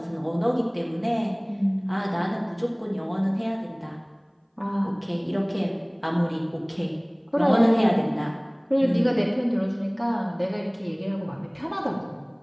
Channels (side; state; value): both; identical; correlation 1.00